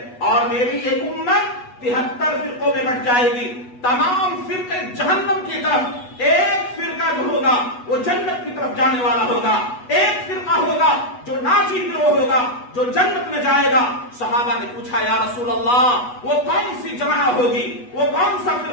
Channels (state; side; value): late; right; 8.2 ms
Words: اور میری ایک امت 73 فرقوں میں بٹ جائے گی۔ تمام فرقے جہنم کی طرف، ایک فرقہ جو ہوگا وہ جنت کی طرف جانے والا ہوگا، ایک فرقہ ہوگا جو ناجی گروہ ہوگا جو جنت میں جائے گا۔ صحابہ نے پوچھا یا رسول اللہ وہ کون سی جماعت ہوگی، وہ کون سا